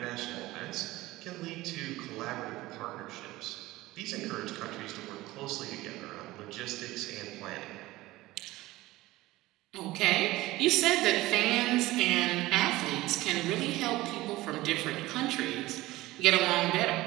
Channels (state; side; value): quieter; left; 18.2 dB